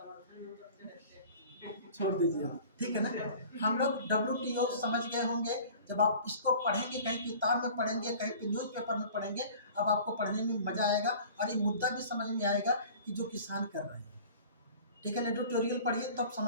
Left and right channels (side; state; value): both; inverted; correlation -0.44